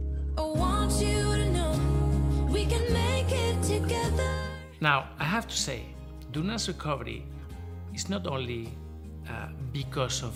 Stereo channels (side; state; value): both; identical; correlation 1.00